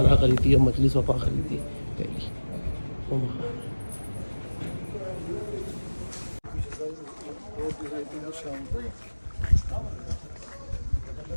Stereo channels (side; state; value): both; inverted; correlation -1.00